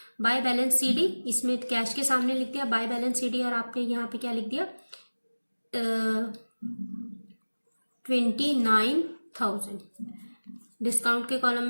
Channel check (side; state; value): both; inverted; correlation -1.00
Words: बाय बैलेंस CD, इसमें कैश के सामने लिख दिया बाय बैलेंस CD, और आपने यहाँ पे क्या लिख दिया? 29,000। डिस्काउंट के कॉलम